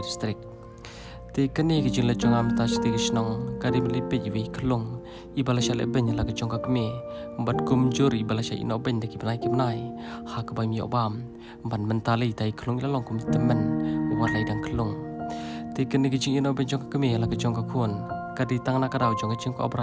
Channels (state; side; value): identical; both; correlation 1.00